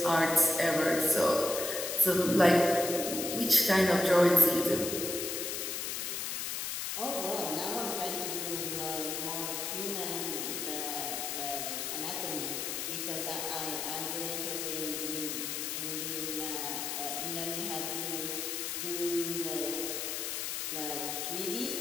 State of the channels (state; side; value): noise; left; hiss, 3 dB below the sound